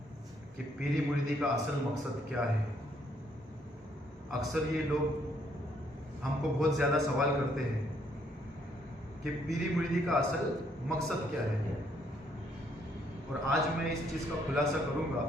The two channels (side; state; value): both; normal; correlation 0.70